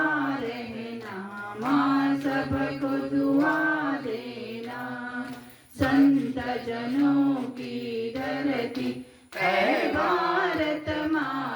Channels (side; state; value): both; identical; correlation 1.00